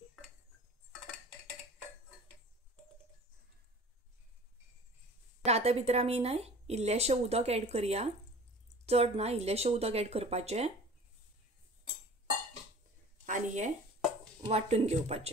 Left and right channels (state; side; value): normal; both; correlation 0.43